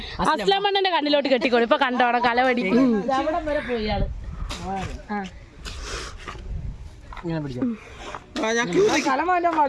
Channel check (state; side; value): identical; both; correlation 1.00